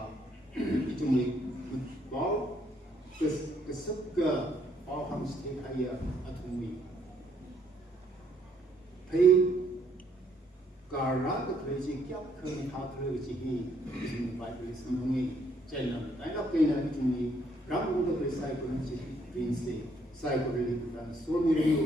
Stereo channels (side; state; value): both; normal; correlation 0.69